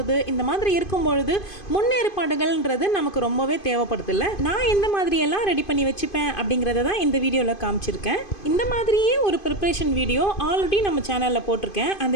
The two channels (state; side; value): late; right; 2.5 ms